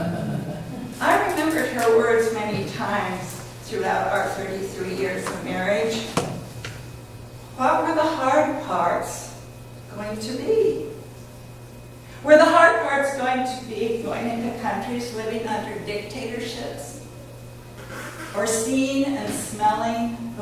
I remembered her words many times throughout our 33 years of marriage. What were the hard parts going to be? Were the hard parts going to be going into countries living under dictatorships? Or seeing and smelling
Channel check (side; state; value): both; identical; correlation 1.00